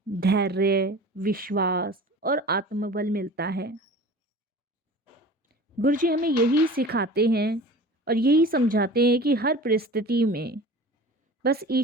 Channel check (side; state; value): both; normal; correlation 0.39